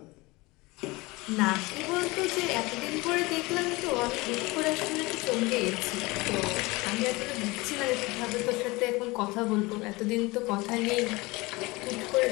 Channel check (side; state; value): right; quieter; 22.9 dB